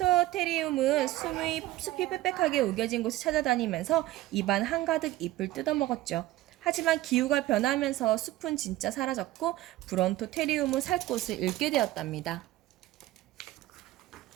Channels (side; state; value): left; quieter; 16.3 dB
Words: 숲이 빽빽하게 우겨진 곳을 찾아다니면서 입안 한가득 잎을 뜯어먹었죠. 하지만 기후가 변하면서 숲은 진짜 사라졌고 브론토테리움은 살 곳을 잃게 되었답니다.